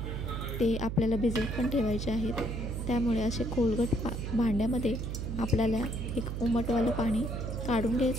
ते आपल्याला भिजत पण ठेवायचे आहेत. त्यामुळे असे खोलगट भांड्यामध्ये आपल्याला एक उमटवालं पाणी काढून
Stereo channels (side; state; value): right; noise; hum, 4 dB below the sound